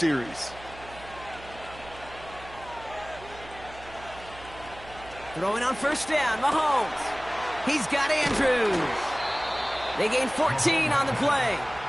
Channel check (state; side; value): noise; right; hum, 18 dB below the sound